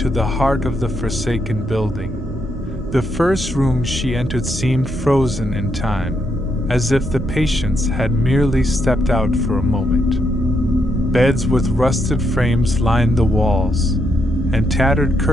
the heart of the forsaken building. The first room she entered seemed frozen in time, as if the patients had merely stepped out for a moment. Beds with rusted frames lined the walls, and tattered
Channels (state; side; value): normal; both; correlation 0.79